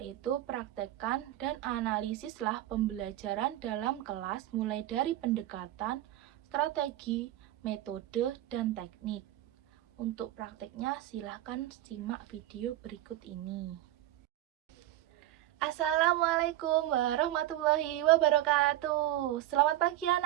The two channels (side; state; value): left; quieter; 14.3 dB